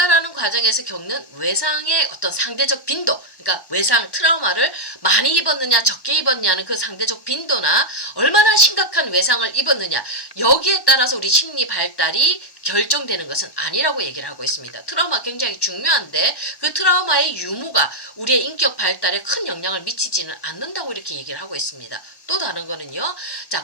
과정에서 겪는 외상의 어떤 상대적 빈도, 그러니까 외상, 트라우마를 많이 입었느냐, 적게 입었냐는 그 상대적 빈도나 얼마나 심각한 외상을 입었느냐, 여기에 따라서 우리 심리 발달이 결정되는 것은 아니라고 얘기를 하고 있습니다. 트라우마 굉장히 중요한데 그 트라우마의 유무가 우리의 인격 발달에 큰 영향을 미치지는 않는다고 이렇게 얘기를 하고 있습니다. 또 다른 거는요.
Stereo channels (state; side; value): late; right; 1.1 ms